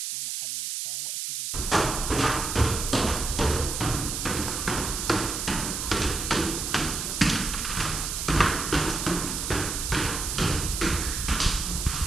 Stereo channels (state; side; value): noise; right; hiss, 3 dB below the sound